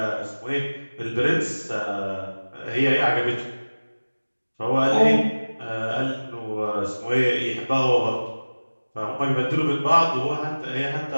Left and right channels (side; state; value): both; inverted; correlation -1.00